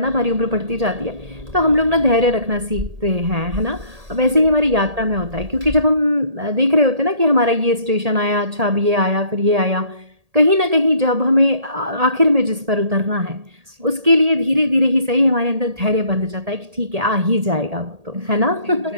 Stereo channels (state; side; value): late; left; 1.8 ms